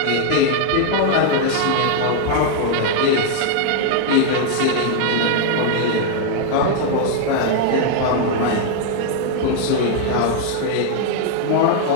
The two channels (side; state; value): both; different; correlation 0.00